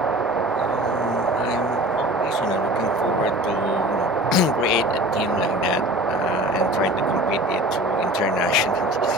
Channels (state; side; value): normal; both; correlation 0.40